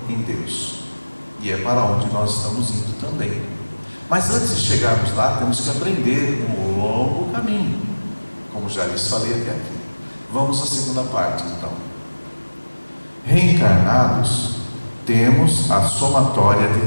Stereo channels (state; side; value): inverted; both; correlation -1.00